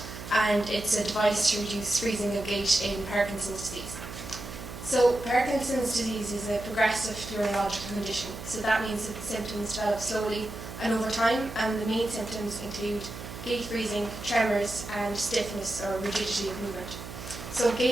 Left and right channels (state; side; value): noise; right; hum, 11 dB below the sound